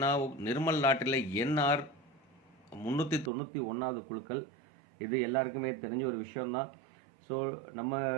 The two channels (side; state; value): left; drops out; at 3.3 s